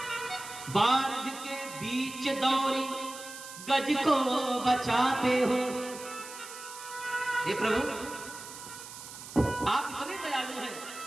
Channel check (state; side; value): noise; right; hiss, 13 dB below the sound